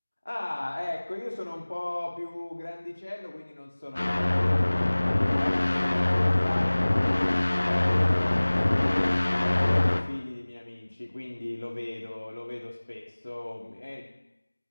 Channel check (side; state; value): both; inverted; correlation -1.00